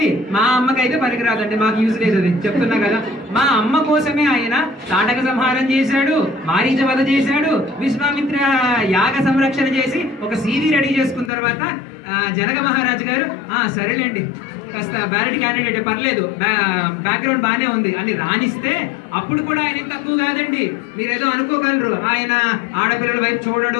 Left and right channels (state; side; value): drops out; right; at 11.3 s